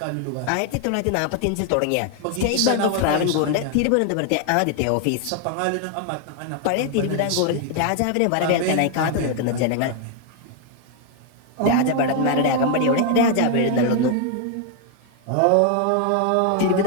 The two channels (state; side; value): different; both; correlation 0.00